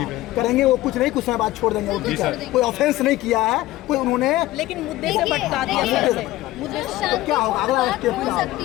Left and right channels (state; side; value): quieter; right; 16.8 dB